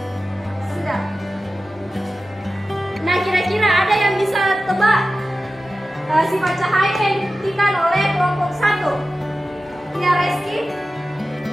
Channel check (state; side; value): normal; both; correlation 0.94